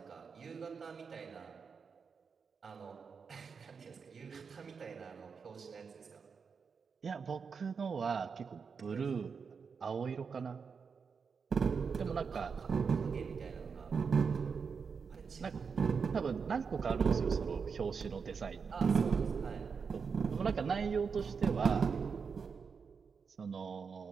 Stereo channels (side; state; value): left; quieter; 5.7 dB